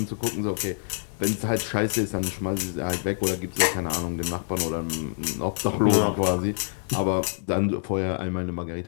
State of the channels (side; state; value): right; silent; digital silence